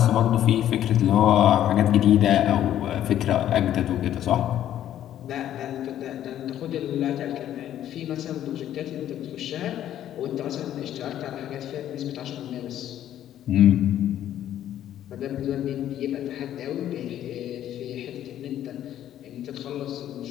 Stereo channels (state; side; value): quieter; right; 11.5 dB